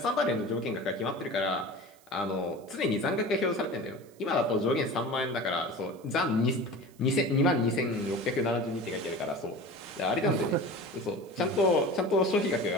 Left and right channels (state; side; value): noise; right; hiss, 28 dB below the sound